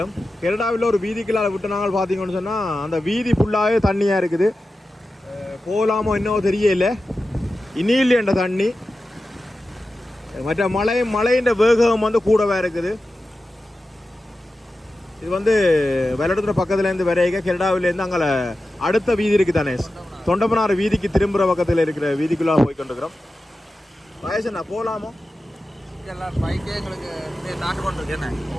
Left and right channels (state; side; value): normal; both; correlation 0.93